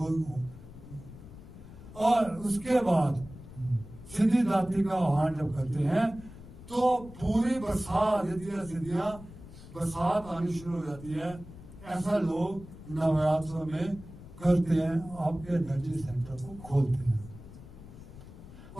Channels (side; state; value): left; noise; rumble, 16 dB below the sound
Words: हो। और उसके बाद सिद्धिदात्री का आह्वान जब करते हैं तो पूरी बरसात सिद्धियां बरसात आनी शुरू हो जाती है। ऐसा लोग नवरात्रों में करते हैं, आपके एनर्जी सेंटर को खोलते हैं।